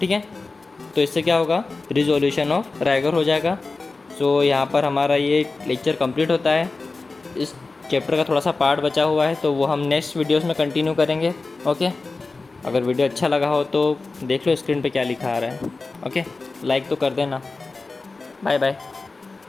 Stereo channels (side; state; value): right; quieter; 3.7 dB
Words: है। तो इससे क्या होगा, रिजोल्यूशन ऑफ रैगर हो जाएगा। सो यहाँ पर हमारा ये लेक्चर कंप्लीट होता है। इस चैप्टर का थोड़ा सा पार्ट बचा हुआ है तो वो हम नेक्स्ट वीडियोस में कंटिन्यू करेंगे, ओके। अगर वीडियो अच्छा लगा हो तो देख लो स्क्रीन पे क्या लिखा आ रहा है, ओके। लाइक तो कर देना। बाय बाय।